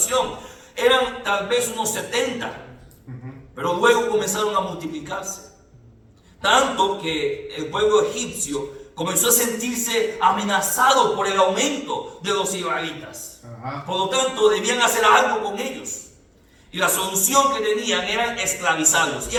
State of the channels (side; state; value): both; identical; correlation 1.00